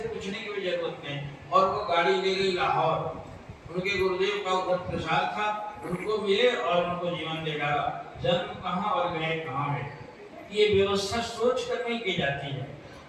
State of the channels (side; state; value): both; identical; correlation 1.00